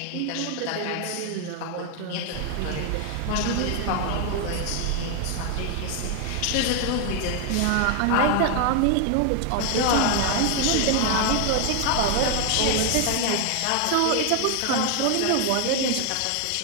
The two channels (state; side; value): different; both; correlation 0.00